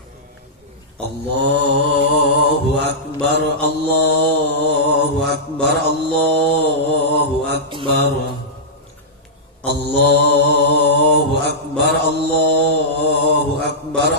Allahu Akbar, Allahu Akbar, Allahu Akbar, Allahu Akbar, Allahu Akbar,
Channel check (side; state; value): both; normal; correlation -0.12